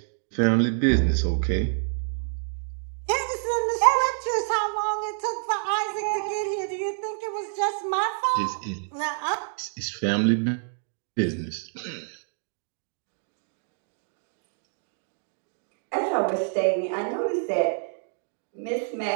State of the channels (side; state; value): left; silent; digital silence